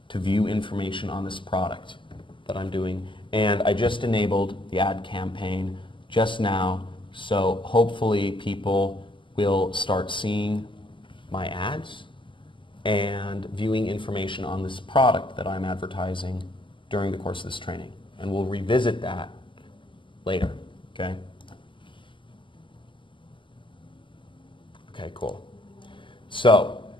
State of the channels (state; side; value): late; right; 0.24 ms